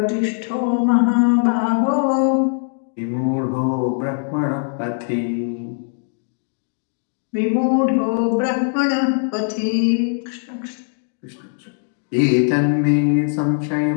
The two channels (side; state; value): right; silent; digital silence